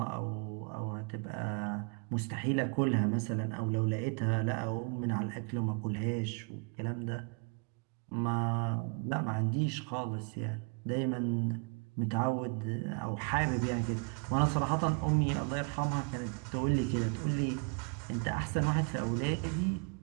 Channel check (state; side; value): quieter; left; 36.8 dB